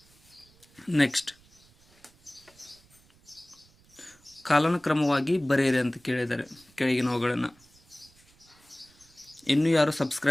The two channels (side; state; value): right; noise; rumble, 30 dB below the sound